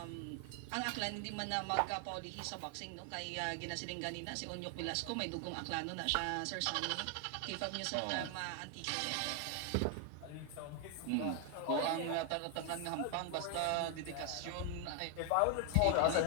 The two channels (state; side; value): different; both; correlation 0.00